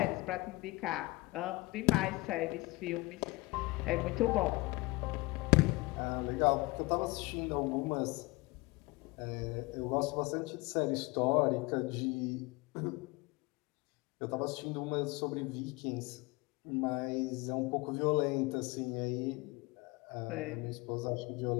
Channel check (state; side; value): quieter; right; 23.4 dB